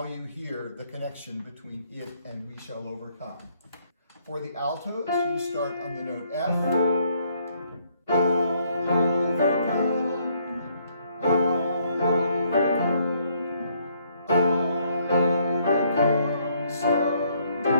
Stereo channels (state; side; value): inverted; both; correlation -0.68